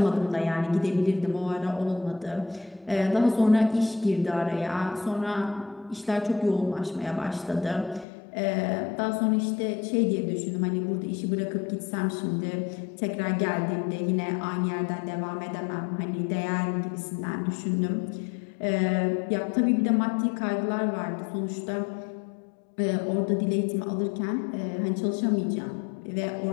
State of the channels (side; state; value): right; drops out; at 8.1 s